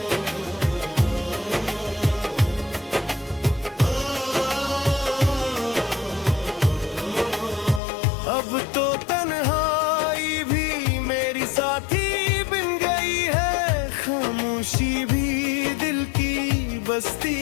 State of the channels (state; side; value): drops out; right; at 7.8 s